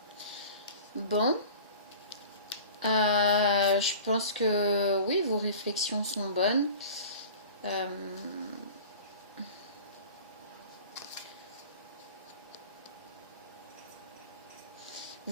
Bon. Je pense que oui, vos réflexions sont bonnes.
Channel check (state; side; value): inverted; both; correlation -0.40